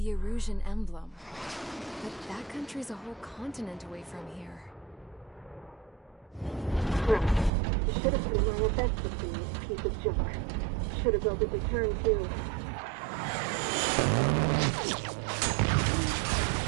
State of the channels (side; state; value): left; drops out; at 7.5 s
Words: Erusian emblem. But that country's a whole continent away from here. Right. You should have put in my offensive thing, you piece of junk. Should have built a return too.